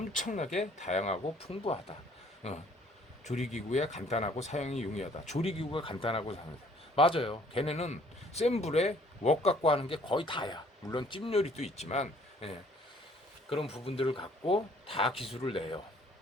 다양하고 풍부하다. 조리기구에 간단하고 사용이 용이하다. 조리기구가 간단하고 사용하다. 맞아요. 걔네는 센 불에 웍 갖고 하는 게 거의 다야. 물론 찜 요리도 있지만 그런 부분들을 갖고 다 기술을 내요.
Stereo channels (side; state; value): both; normal; correlation 0.59